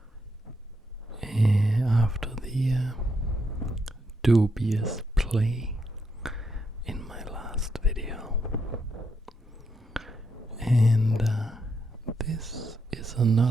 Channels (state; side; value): normal; both; correlation 0.79